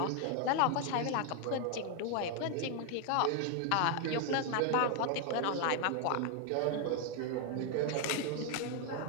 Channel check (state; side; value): different; both; correlation 0.01